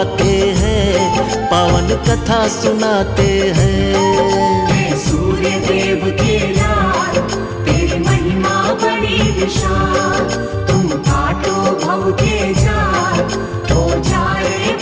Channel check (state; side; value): identical; both; correlation 1.00